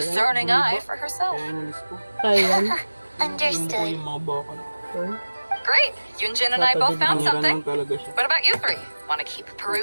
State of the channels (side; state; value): both; inverted; correlation -1.00